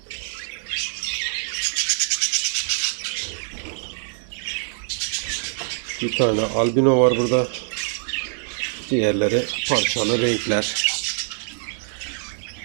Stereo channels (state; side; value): silent; left; digital silence